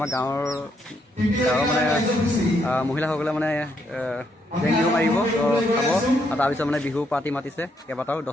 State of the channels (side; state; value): both; normal; correlation 0.75